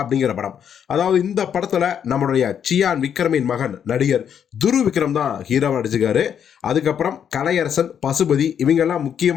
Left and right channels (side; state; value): right; quieter; 8.4 dB